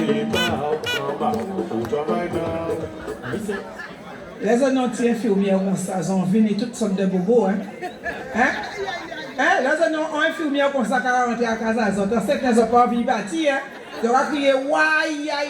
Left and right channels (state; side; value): identical; both; correlation 1.00